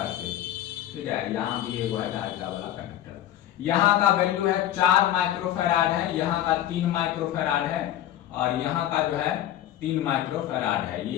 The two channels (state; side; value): quieter; right; 12.3 dB